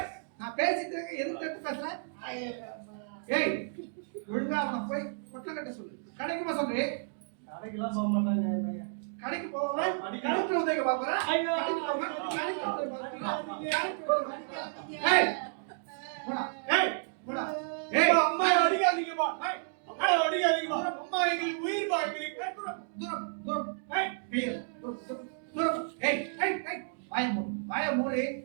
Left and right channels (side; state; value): left; silent; digital silence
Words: நான் பேசிட்டு இருக்க எதுக்கு தட்டு பேசுறேன்? ஏய் ஒழுங்கா அவனை போய் பொட்டலம் கட்ட சொல்லு. கடைக்கு போக சொல்றே. கடைக்கெல்லாம் போக மாட்டாங்க என் பையன். கடைக்கு போவேன். கடைக்கு உதவி பாக்குறேன். ஏய் போடா. ஏய் போடா. ஏய் அம்மா அடிக்காதீங்கப்பா. அம்மா அடிக்காதீங்கப்பா. அம்மா எங்களுக்கு உயிர் பாக்குறீங்க. தூரம் தூரம். ஏய் தூரம். ஏய் ஏய் ஏய் வாய